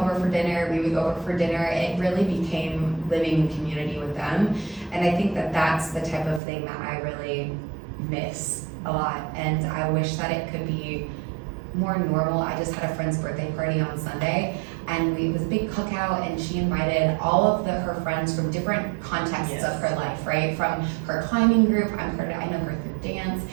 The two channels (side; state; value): left; drops out; at 6.4 s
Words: for dinner, we would go over for dinner. It really became living in community with them, and I think that that's the type of thing that I really miss a lot, and I wish that it could be more normal. I just had a friend's birthday party on Sunday, and it was a big cookout, and she invited all of her friends from different contexts of her life, right? From her climbing group, I know her through dance.